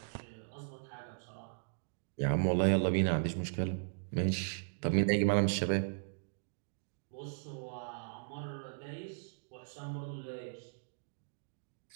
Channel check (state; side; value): silent; left; digital silence